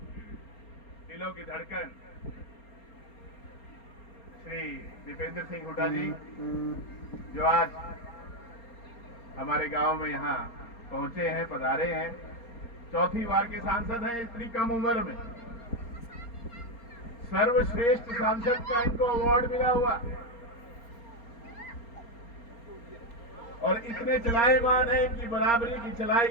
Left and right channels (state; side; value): late; right; 4.3 ms